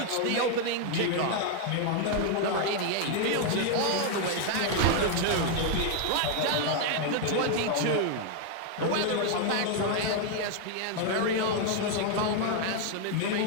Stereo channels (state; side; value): different; both; correlation 0.00